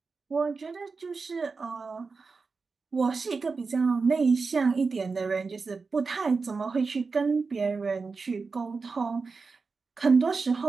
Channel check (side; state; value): left; quieter; 4.5 dB